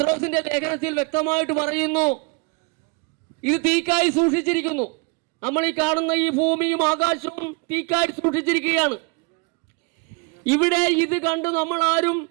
ലേഖനത്തിൽ വ്യക്തമായിട്ട് പറയുന്നു, ഇത് തീക്കായി സൂക്ഷിച്ചിരിക്കുന്നു. നമ്മൾ ഈ കാണുന്ന ഈ ഭൂമിയും ആകാശവും തീക്കായി സൂക്ഷിച്ചിരിക്കുകയാണ്. ഇവിടെ ഇത് കണ്ട് നമ്മൾ ആരും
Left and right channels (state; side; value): quieter; left; 30.4 dB